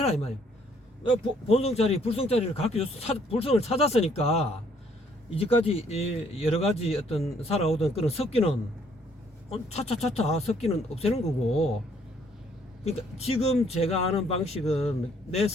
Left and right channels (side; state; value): both; normal; correlation 0.64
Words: 이 말이야. 본성자리 불성자리를 가르쳐줘서 불성을 찾았으니까 이제까지 여러 가지 어떤 살아오던 그런 섞기는 차차차차 섞기는 없애는 거고. 그러니까 지금 제가 하는 방식은 내